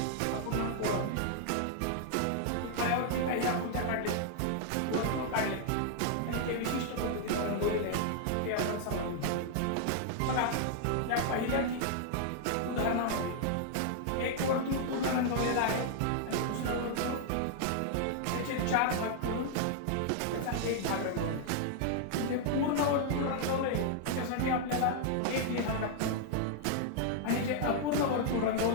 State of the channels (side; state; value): both; different; correlation -0.01